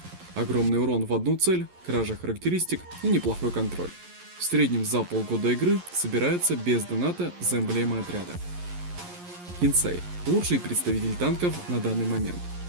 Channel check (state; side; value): late; left; 11 ms